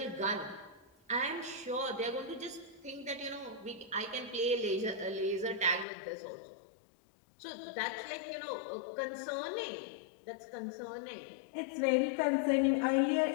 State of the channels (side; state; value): right; drops out; at 5.9 s